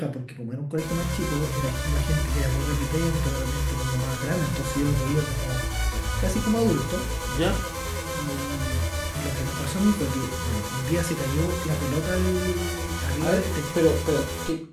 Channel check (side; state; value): both; identical; correlation 1.00